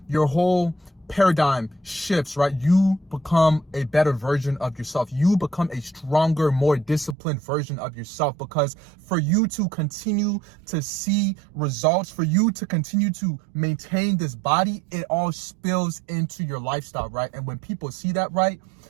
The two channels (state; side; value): drops out; left; at 7.2 s